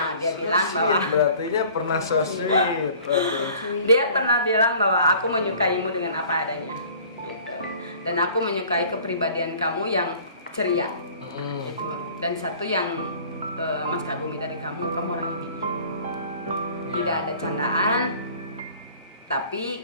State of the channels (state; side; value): inverted; both; correlation -0.49